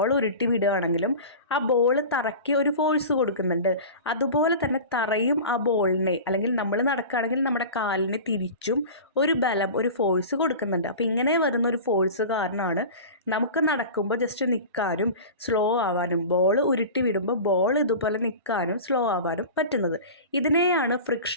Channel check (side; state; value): both; inverted; correlation -0.34